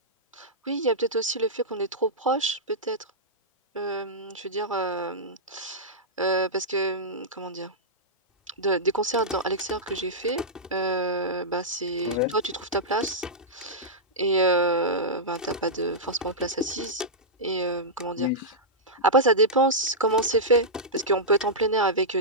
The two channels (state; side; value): normal; both; correlation -0.11